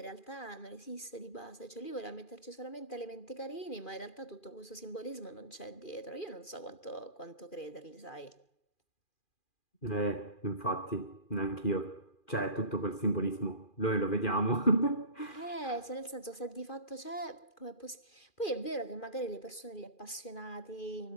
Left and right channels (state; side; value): late; right; 2.4 ms